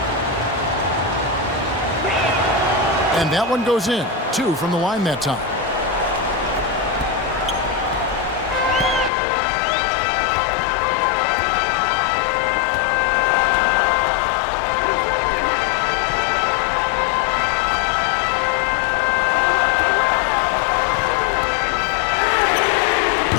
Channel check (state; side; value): drops out; right; at 9.1 s